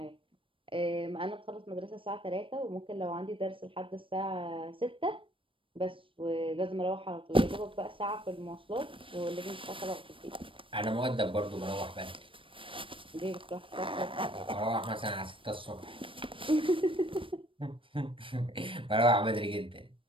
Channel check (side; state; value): left; late; 0.25 ms